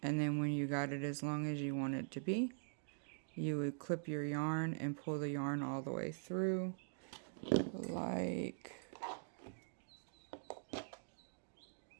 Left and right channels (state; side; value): silent; left; digital silence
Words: and then when you got it as long as you want it to be, you would clip your yarn and pull the yarn all the way through like